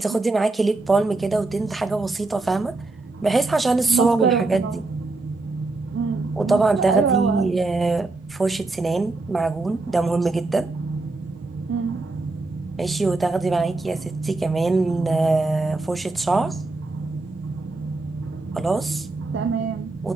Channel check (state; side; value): quieter; left; 3.3 dB